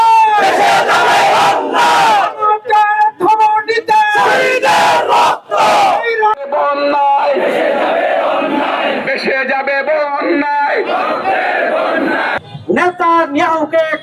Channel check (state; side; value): identical; both; correlation 1.00